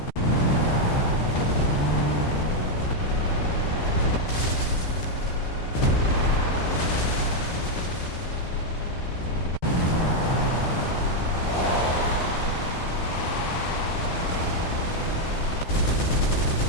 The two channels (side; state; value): right; late; 14 ms